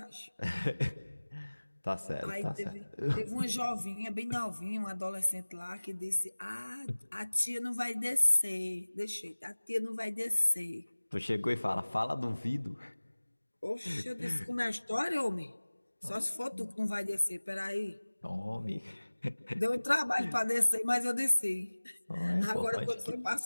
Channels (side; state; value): both; inverted; correlation -1.00